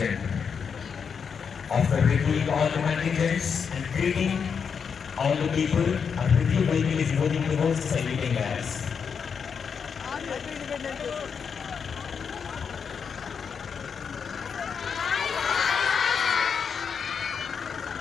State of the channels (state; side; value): quieter; right; 6.4 dB